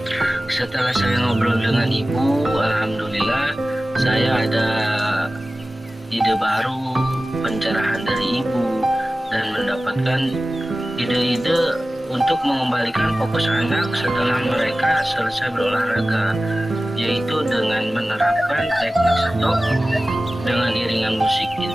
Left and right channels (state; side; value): normal; both; correlation 0.96